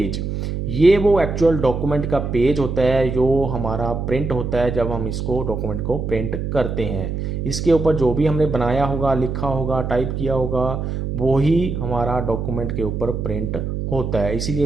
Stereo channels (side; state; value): right; noise; hum, 3 dB below the sound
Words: ये वो एक्चुअल डॉक्यूमेंट का पेज होता है जो हमारा प्रिंट होता है जब हम इसको डॉक्यूमेंट को प्रिंट करते हैं। इसके ऊपर जो भी हमने बनाया होगा, लिखा होगा, टाइप किया होगा, वो ही हमारा डॉक्यूमेंट के ऊपर प्रिंट होता है, इसीलिए